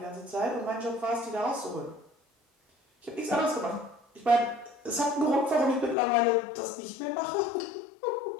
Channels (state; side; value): drops out; right; at 6.0 s